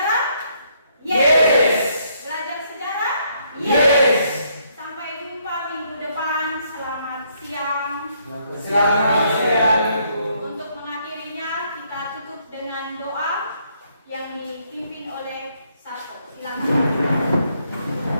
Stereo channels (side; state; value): both; inverted; correlation -0.71